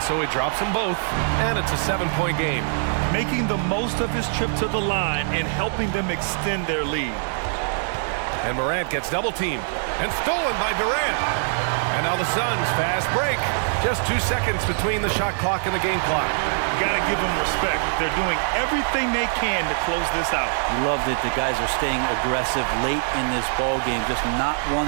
so he drops them both, and it's a 7-point game. Making the most of his trip to the line and helping them extend their lead. And Morant gets double-teamed and stolen by Durant. And now the Suns fast break. Just 2 seconds between the shot clock and the game clock. Gotta give them respect. They're doing everything they can to close this out. Love that the guys are staying aggressive late in this ball game, just not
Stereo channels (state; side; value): silent; left; digital silence